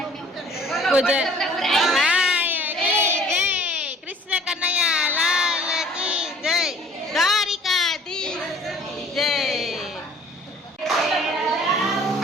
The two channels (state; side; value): normal; both; correlation 0.53